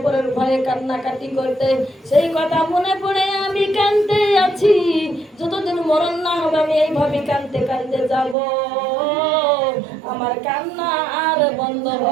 ভয়ে কান্নাকাটি করতে, সেই কথা মনে পড়ে আমি কাঁদতে আছি, যতদিন মরণ না হবে আমি এইভাবে কাঁদতে কাঁদতে যাব, আমার কান্না আর বন্ধ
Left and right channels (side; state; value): left; drops out; at 8.3 s